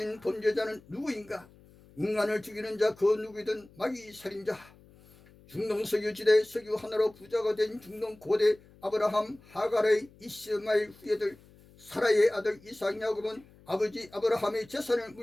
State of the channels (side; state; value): left; noise; hum, 25 dB below the sound